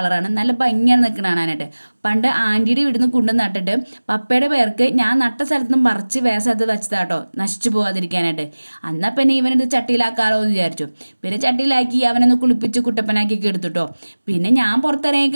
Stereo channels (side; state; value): both; inverted; correlation -1.00